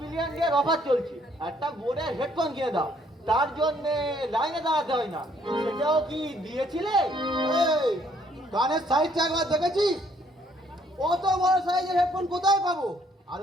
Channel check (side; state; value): both; normal; correlation 0.65